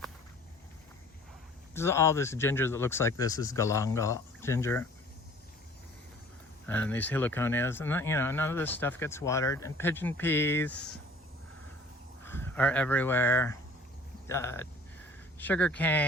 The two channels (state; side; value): normal; both; correlation 0.51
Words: All this ginger that looks like this is galangal ginger, and these heliconias, and you know, none of this stuff gets watered. And pigeon peas are everywhere. Sugar